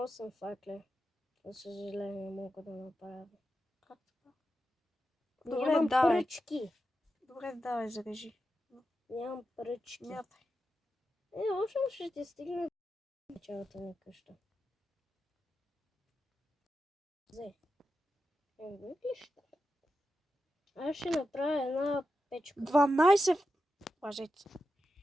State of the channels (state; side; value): normal; both; correlation 0.89